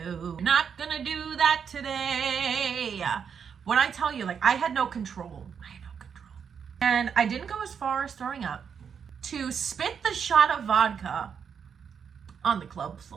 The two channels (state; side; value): quieter; left; 7.0 dB